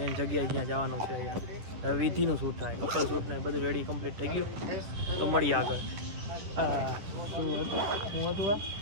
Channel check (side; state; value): left; late; 10 ms